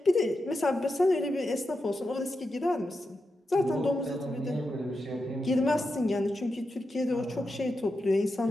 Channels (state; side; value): normal; both; correlation 0.88